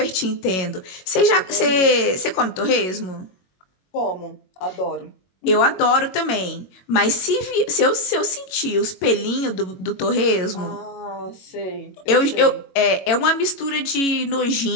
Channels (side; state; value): right; late; 22 ms